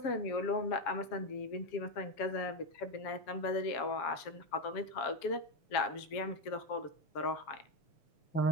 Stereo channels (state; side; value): late; right; 7.2 ms